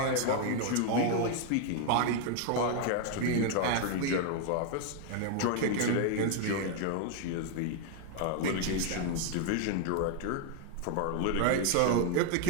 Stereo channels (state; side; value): different; both; correlation 0.00